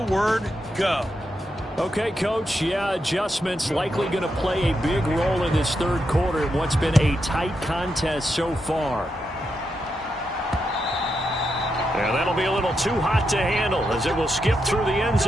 go. Okay, Coach, yeah, adjustments likely going to play a big role in this 3rd quarter in what's been a tight contest so far. And that'll be a little too hot to handle as it will skip through the end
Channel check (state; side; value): normal; both; correlation 0.84